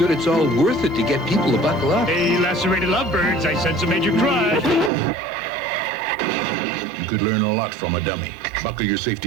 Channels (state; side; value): drops out; left; at 4.9 s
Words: it's all worth it to get people to buckle up. Hey, lacerated lovebirds, I sense a major crush. You could learn a lot from a dummy. Buckle your